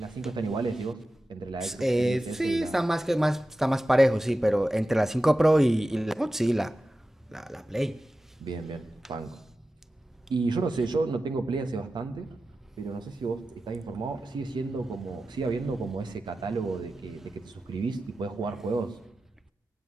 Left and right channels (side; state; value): both; normal; correlation 0.93